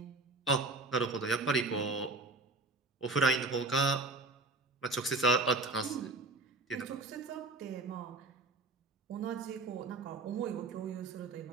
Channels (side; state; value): left; quieter; 3.2 dB